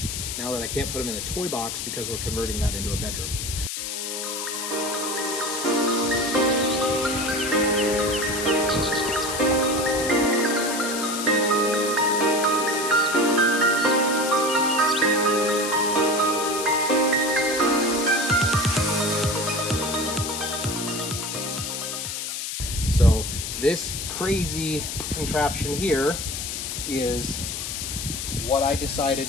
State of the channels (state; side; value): noise; left; hiss, 4 dB below the sound